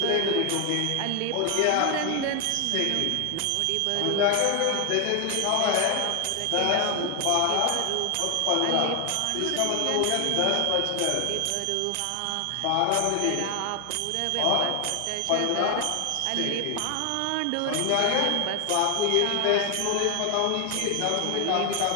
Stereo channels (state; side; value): different; both; correlation 0.00